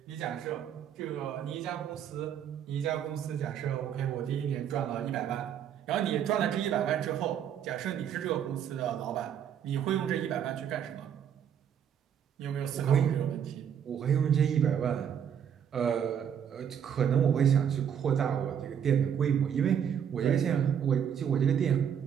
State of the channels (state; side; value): quieter; left; 8.6 dB